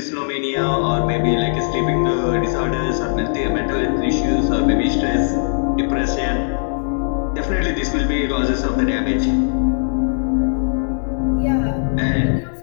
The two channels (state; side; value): silent; right; digital silence